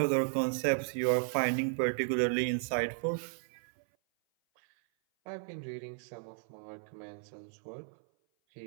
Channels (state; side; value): silent; left; 55 dB below the other